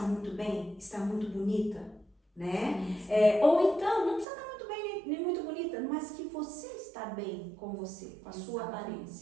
muito bem, está muito bonita, né? Ou então, não precisa estar muito bem nem muito bonita, mas que você está bem com você, com a sua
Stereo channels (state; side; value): drops out; left; at 4.2 s